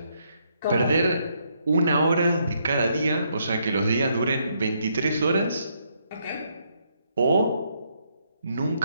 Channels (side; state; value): both; inverted; correlation -0.74